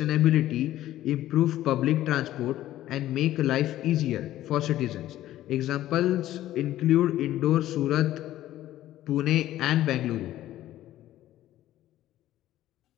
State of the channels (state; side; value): quieter; right; 13.9 dB